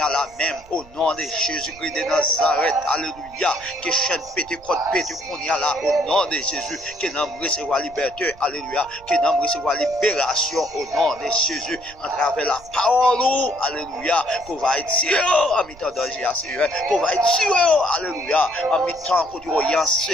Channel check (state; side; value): noise; right; rumble, 23 dB below the sound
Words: a la même, au nom de Jésus-Christ de Nazareth, alléluia, que chaîne pété, côte pété, qu'on y a là, au nom de Jésus, que nous recevoir liberté, alléluia, que nous recevoir libération, au nom de Jésus, en travers la parole, alléluia, qu'on va être en mi-temps danger, Seigneur, qu'on va être tué, alléluia, en mi-temps, qu'on dit,